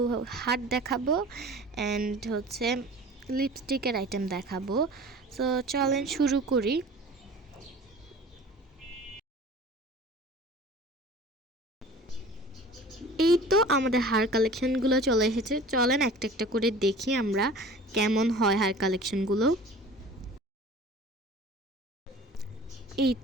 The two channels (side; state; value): both; normal; correlation 0.42